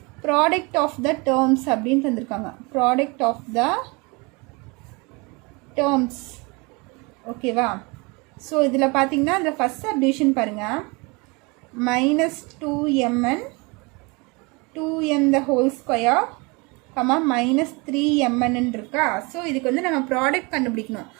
product of the terms அப்படின்னு தந்திருக்காங்க. Product of the terms. ஓகேவா? ஸோ இதில் பார்த்தீங்கன்னா இந்த ஃபஸ்ட் சப்டிவிஷன் பாருங்கள். -2mn 2m the whole square -3mn இருக்கா. ஸோ இதுக்கு வந்து நம்ம ப்ராடக்ட் கண்டுபிடிக்கணும்.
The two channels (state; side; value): quieter; left; 28.0 dB